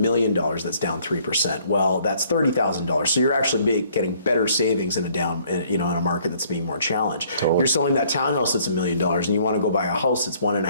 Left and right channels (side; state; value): both; inverted; correlation -0.62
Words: that's down 3%. Well, that's $30,000. So you're actually getting better savings in in a market that's being more challenged. Totally. You're selling that townhouse that's $1 million and you want to go buy a house that's